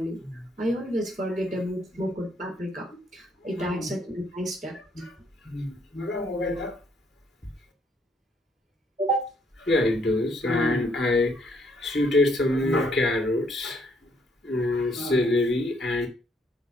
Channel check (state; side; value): normal; both; correlation 0.68